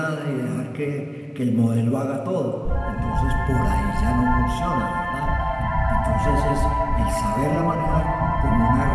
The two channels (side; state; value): both; identical; correlation 1.00